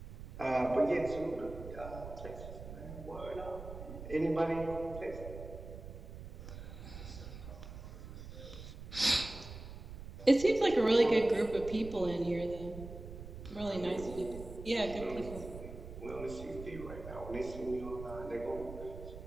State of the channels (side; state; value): right; noise; rumble, 11 dB below the sound